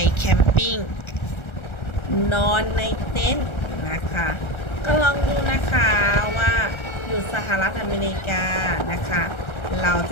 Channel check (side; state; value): right; late; 1.3 ms